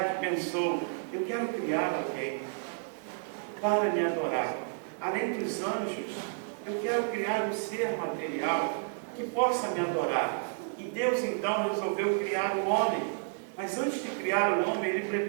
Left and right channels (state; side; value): silent; left; digital silence